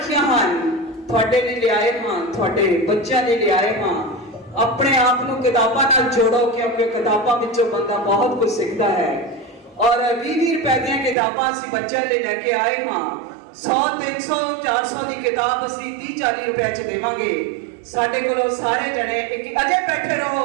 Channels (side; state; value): left; drops out; at 11.2 s